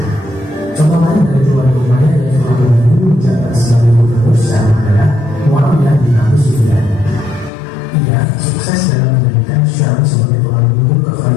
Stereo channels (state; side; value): drops out; right; at 7.5 s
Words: Contoh lain dari keluarga Umayyah yang telah dulu menjabat sebagai gubernur Syam adalah Muawiyah bin Abi Sufyan. Ia sukses dalam menjadikan Syam sebagai tulang punggung